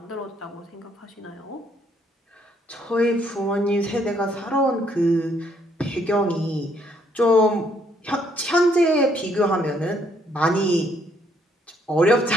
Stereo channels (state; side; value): normal; both; correlation 0.69